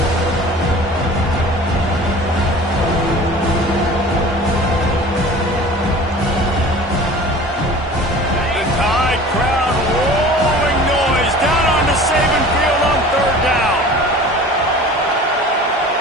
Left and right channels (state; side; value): normal; both; correlation 0.42